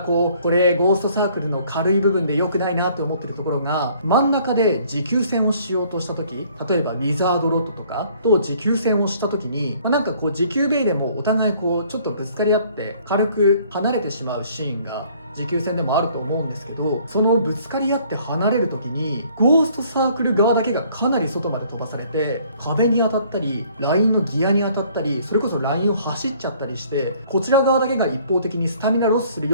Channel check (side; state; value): both; inverted; correlation -0.59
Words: れゴーストサークルの軽い部分で良くないなと思ってるところが、真ん中で持久戦をしようとした時、例えばウィザードロッドとかと持久戦をした時に、なんか持久ベイでもお互いちょっとぶつかり合って軽く離れてしまうシーンが持久戦でもあると思うんですけど、そのぶつかり合って離れる時にゴーストサークル側だけがかなり外まで飛ばされて、壁に当たったりラインのギアに当たったり、それこそラインを走っちゃったりして、こちら側だけが一方的にスタミナロスする